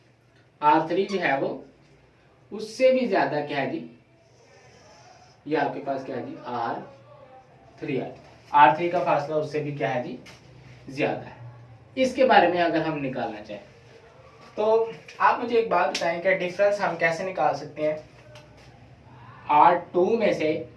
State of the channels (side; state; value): both; identical; correlation 1.00